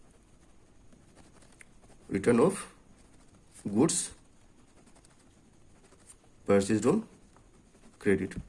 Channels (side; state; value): both; identical; correlation 1.00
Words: return of goods purchased on credit.